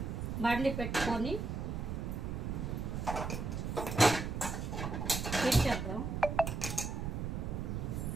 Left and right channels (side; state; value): right; noise; rumble, 3 dB below the sound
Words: బండి పెట్టుకొని చేద్దాం.